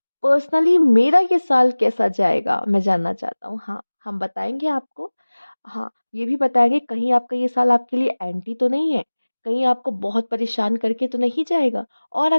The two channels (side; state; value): both; inverted; correlation -1.00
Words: पर्सनली मेरा ये साल कैसा जाएगा मैं जानना चाहता हूँ। हाँ, हम बताएंगे आपको। हाँ, ये भी बताएँगे कहीं आपका ये साल आपके लिए एंटी तो नहीं है, कहीं आपको बहुत परेशान करके तो नहीं जाएगा, और